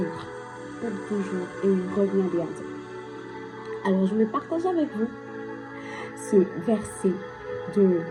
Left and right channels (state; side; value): identical; both; correlation 1.00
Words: et il revient bientôt. Alors, je vais partager avec vous ce verset de